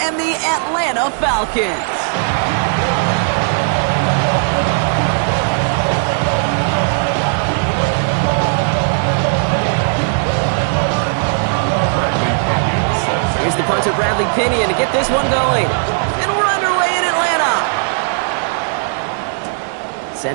and the Atlanta Falcons. Here's the punter, Bradley Pinion, to get this one going. And we're underway in Atlanta.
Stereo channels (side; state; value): left; silent; digital silence